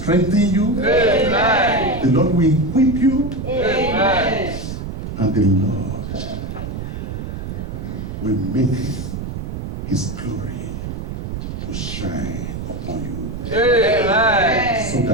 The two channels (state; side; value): noise; right; rumble, 6 dB below the sound